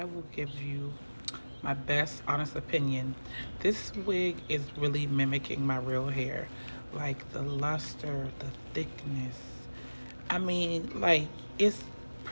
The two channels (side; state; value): both; inverted; correlation -1.00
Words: will give you my best honest opinion. This wig is really mimicking my real hair. Like the luster, the thickness. I mean, like, it's